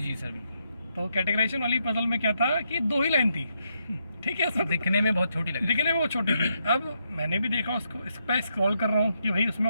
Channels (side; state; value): both; inverted; correlation -0.80